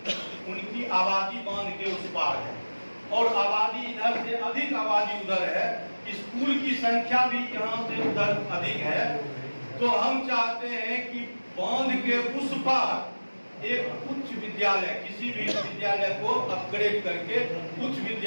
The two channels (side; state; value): both; inverted; correlation -1.00